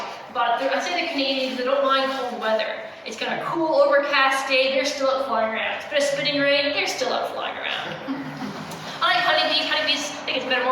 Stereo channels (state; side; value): identical; both; correlation 1.00